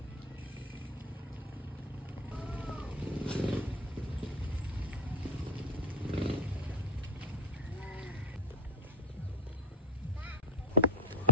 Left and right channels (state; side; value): normal; both; correlation 0.15